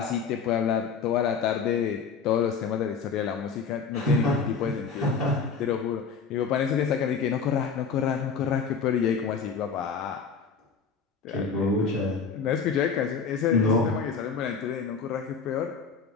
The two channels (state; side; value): quieter; right; 5.6 dB